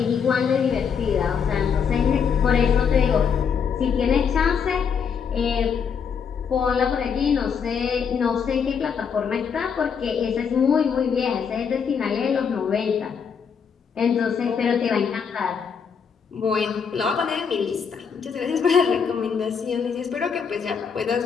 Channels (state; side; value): quieter; right; 6.6 dB